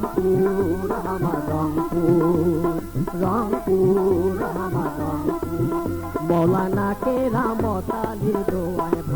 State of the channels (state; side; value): identical; both; correlation 1.00